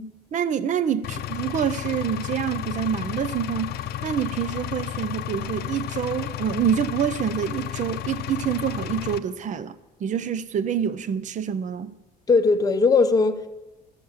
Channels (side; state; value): both; normal; correlation 0.39